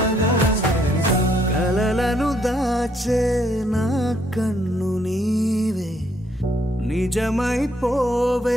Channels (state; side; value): normal; both; correlation 0.71